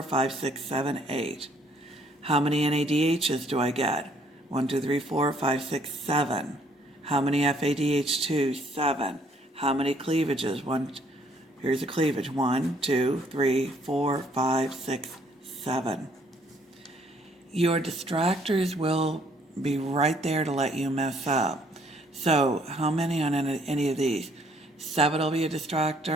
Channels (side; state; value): both; normal; correlation 0.64